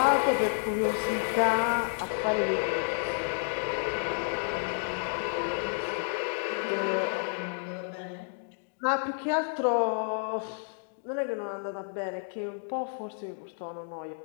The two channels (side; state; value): right; silent; digital silence